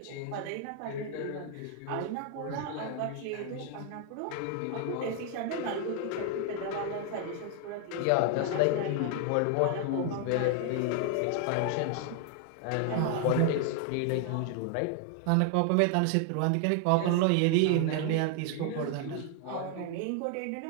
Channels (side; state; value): both; different; correlation 0.00